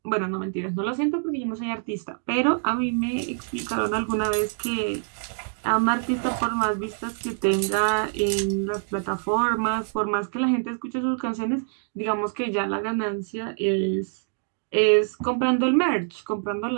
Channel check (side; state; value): left; silent; digital silence